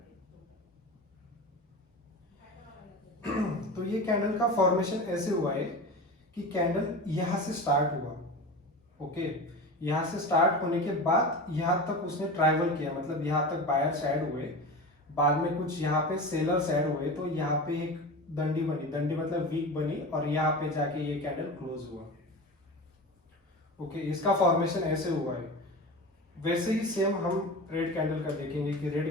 तो ये कैंडल का फॉर्मेशन ऐसे हुआ है कि कैंडल यहां से स्टार्ट हुआ। ओके, यहाँ से स्टार्ट होने के बाद यहाँ तक उसने ट्रैवल किया, मतलब यहाँ तक बायर्स ऐड हुए, बाद में कुछ यहाँ पे सेलर्स ऐड हुए, तो यहाँ पे एक दंडी बनी, दंडी मतलब वीक बनी, और यहाँ पे जाके ये कैंडल क्लोज हुआ। ओके, इसका फॉर्मेशन ऐसे हुआ है। वैसे ही सेम हम रेड कैंडल का देखेंगे कि रेड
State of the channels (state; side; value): normal; both; correlation 0.30